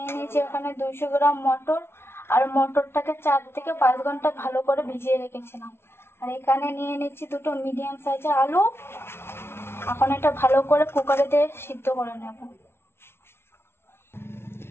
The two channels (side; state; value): right; late; 0.12 ms